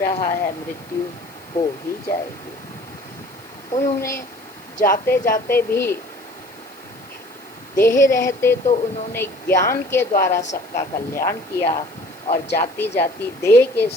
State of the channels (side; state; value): left; noise; hiss, 26 dB below the sound